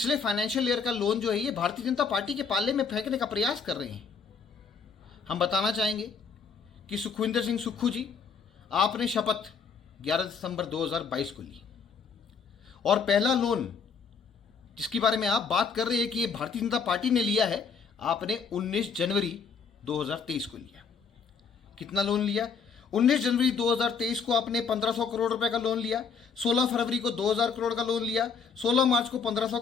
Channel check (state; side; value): quieter; right; 5.7 dB